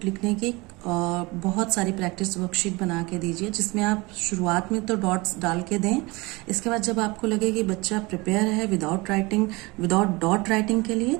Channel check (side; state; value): left; quieter; 24.2 dB